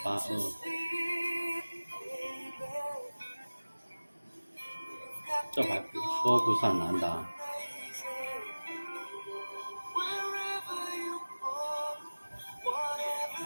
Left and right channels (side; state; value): both; inverted; correlation -1.00